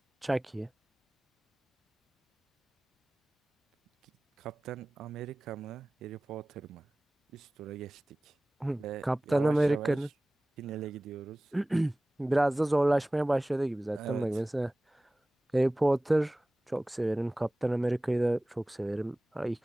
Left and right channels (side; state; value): both; normal; correlation 0.98